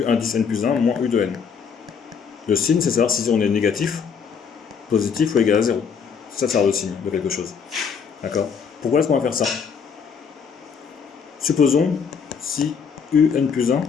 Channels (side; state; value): right; quieter; 6.4 dB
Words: indice n plus 1 moins U de n. Le signe, c'est savoir si on est négatif, positif ou égal à 0. Ça sert le signe de quelque chose. D'accord? Pourquoi est-ce qu'on va faire ça? Supposons si U n plus 1